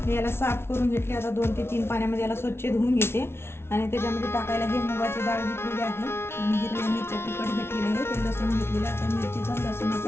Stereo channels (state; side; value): late; right; 0.12 ms